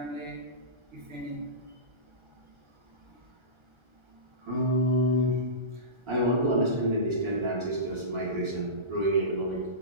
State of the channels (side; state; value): left; late; 1.3 ms